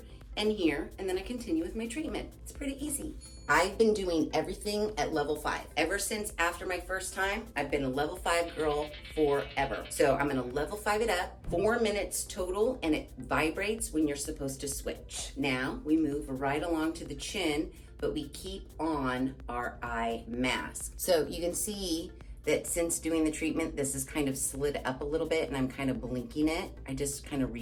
and then I continue with my treatment. It's pretty easy. I've been doing everything at level 5. Ever since after my first time, I've been a level 5 girl forever. So I'm gonna level 5 it up, 4 minutes total, and it vibrates when you're supposed to switch. Now we move right along to the chin, but we keep on our eye mask. So you can see that since doing the treatment, this is kind of slid up a little bit and I'm kind of blinking it. I just kind of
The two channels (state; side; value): identical; both; correlation 1.00